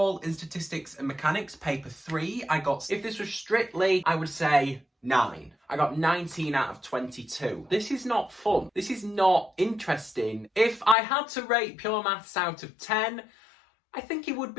in Statistics and Mechanics Paper 3, if this was strictly, I would say 9. I got 19 out of 22. This is not fun. This is not interesting. If I had to rate Pure Maths out of 10, I think it would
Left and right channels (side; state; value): right; drops out; at 11.0 s